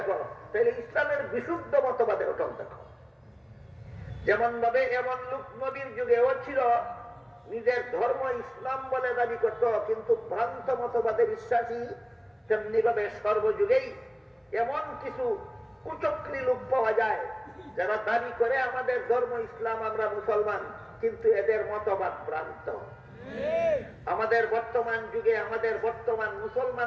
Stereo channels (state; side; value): identical; both; correlation 1.00